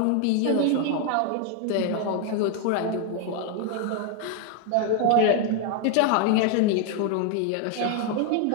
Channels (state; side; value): different; both; correlation 0.00